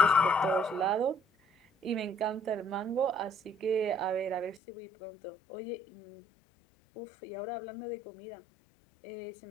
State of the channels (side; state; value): right; drops out; at 4.6 s